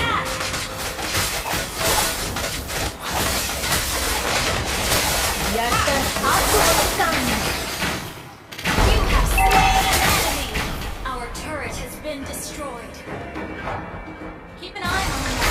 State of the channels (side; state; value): both; identical; correlation 1.00